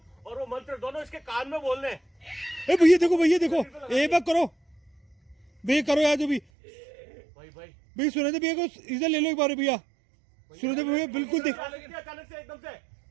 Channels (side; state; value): left; drops out; at 6.4 s